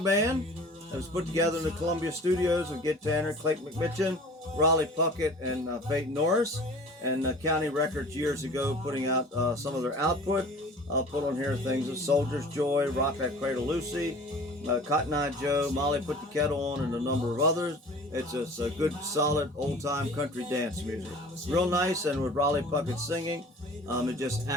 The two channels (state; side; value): normal; both; correlation 0.44